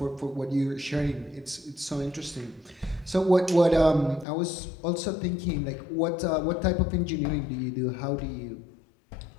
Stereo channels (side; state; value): right; drops out; at 4.2 s